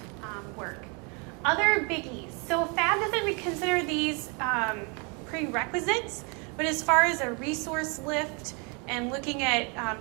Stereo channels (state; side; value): quieter; left; 33.4 dB